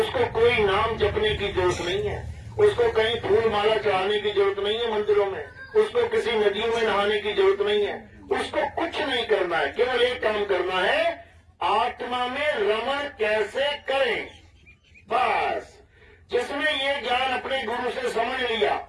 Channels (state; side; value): identical; both; correlation 1.00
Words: कोई नाम जपने की जरूरत नहीं है, उसको कहीं फूल माला चढ़ाने की जरूरत नहीं है मंदिरों में, उसको किसी नदियों में नहाने की जरूरत नहीं है, उसको कुछ नहीं करना है। केवल एक काम करना है, आत्मा में रमण कैसे करें। बस जिसने ये ज्ञान अपने गुरु से समझ लिया